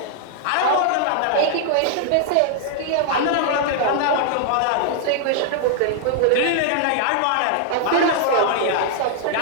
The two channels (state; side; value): different; both; correlation 0.00